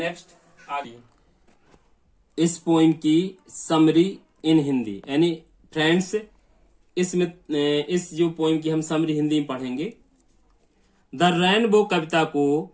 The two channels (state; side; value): identical; both; correlation 1.00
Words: आगे इस पोइम की समरी इन हिंदी, यानी फ्रेंड्स इसमें इस जो पोइम की हम समरी हिंदी में पढ़ेंगे। द रेनबो कविता को